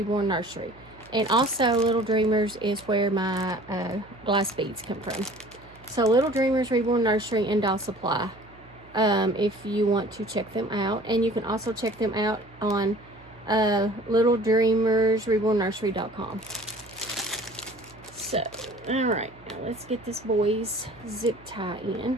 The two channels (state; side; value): noise; right; hum, 25 dB below the sound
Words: Nursery. And also, Little Dreamers is where my glass beads come from. So, Little Dreamers Reborn Nursery and Doll Supply. If you want to check them out. And you can also check them out on littledreamersrebornnursery.com. So, alright, now let's get this boy's zip tie in.